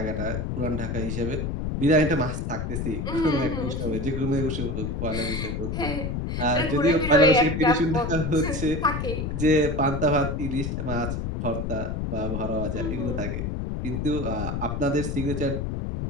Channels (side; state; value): left; noise; rumble, 3 dB below the sound